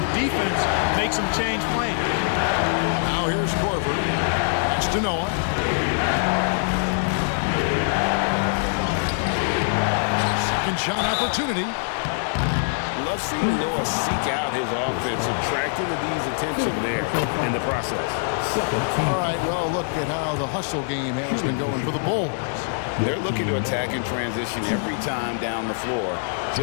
defense makes him change plans. Now here's Korver. Pass to Noah. Second shot opportunity. Love seeing Noah seek out his offense, attracting the D's attention there in the process. All right, well, look at how the hustle game has been going for the Bulls. They're looking to attack in transition every time down the floor,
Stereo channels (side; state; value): right; silent; digital silence